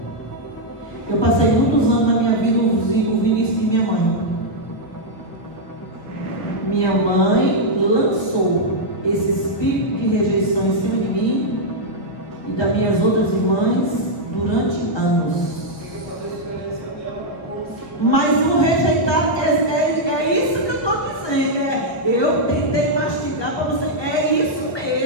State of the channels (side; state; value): right; late; 1.1 ms